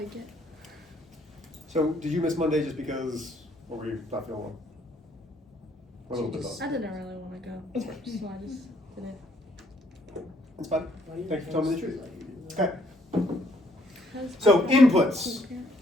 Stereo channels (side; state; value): both; normal; correlation 0.66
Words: it. So did you miss Monday just because, what were you not feeling well? A little bit I both. didn't really want to go. That's fine. So I just didn't. That's fine. Thank you for telling me the truth. Okay. 'Cause So I don't inputs, think